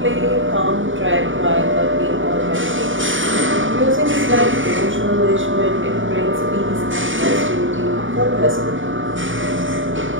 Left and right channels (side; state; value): left; late; 0.57 ms